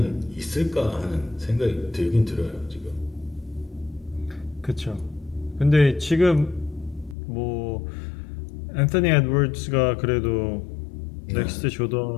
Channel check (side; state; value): right; drops out; at 7.2 s